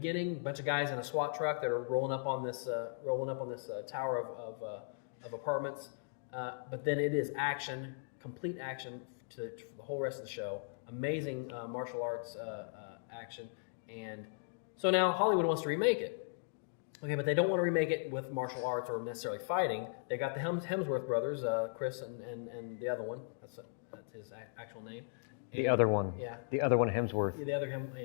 A bunch of guys in a SWAT truck that are rolling up on this tower of apartments. But then it is action, complete action for the whole rest of the show. Amazing martial arts action. And so now Hollywood wants to remake it. Okay, but they don't want to remake it with martial arts or necessarily fighting. They got the Hemsworth brothers, Chris and the other one. That's his actual name. And the other one. Yeah. The other one, Hemsworth. Yeah, the other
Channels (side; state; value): right; silent; digital silence